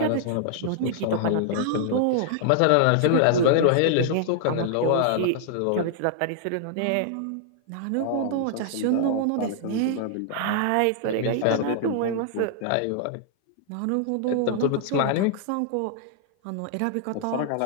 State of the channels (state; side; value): different; both; correlation -0.01